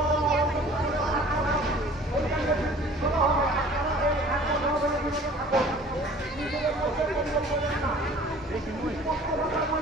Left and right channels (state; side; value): normal; both; correlation 0.48